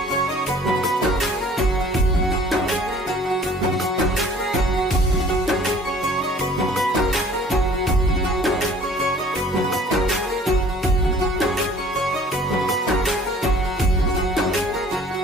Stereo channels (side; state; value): both; normal; correlation 0.52